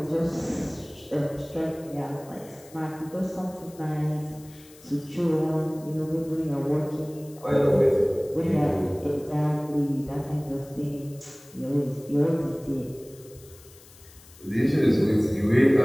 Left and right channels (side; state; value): left; noise; hiss, 23 dB below the sound